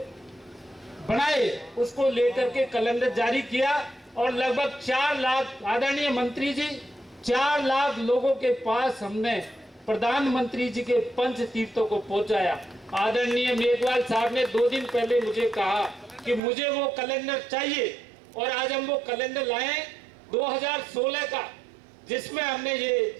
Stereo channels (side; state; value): left; drops out; at 16.4 s